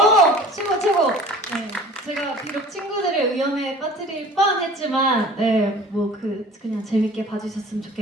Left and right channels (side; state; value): both; normal; correlation 0.45